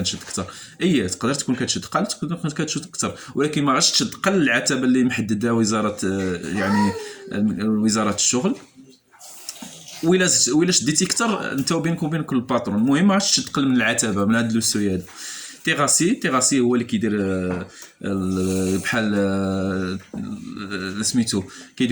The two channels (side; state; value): both; identical; correlation 1.00